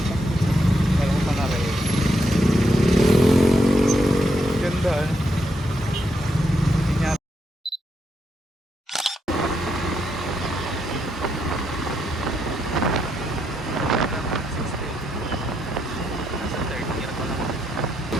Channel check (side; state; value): both; normal; correlation 0.80